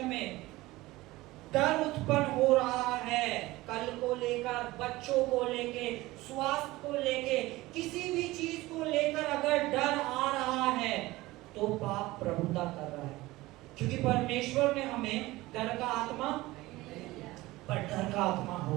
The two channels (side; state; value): left; quieter; 19.1 dB